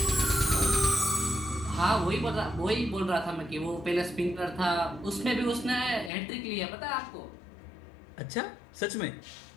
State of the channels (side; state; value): right; drops out; at 6.1 s